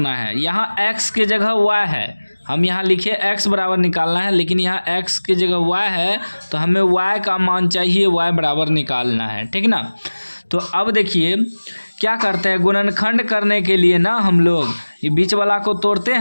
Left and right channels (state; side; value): inverted; both; correlation -1.00